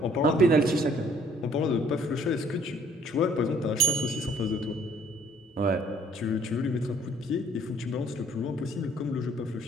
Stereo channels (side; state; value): both; normal; correlation 0.60